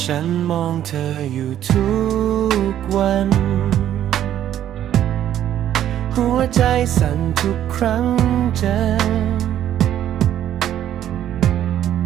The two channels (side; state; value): left; quieter; 11.2 dB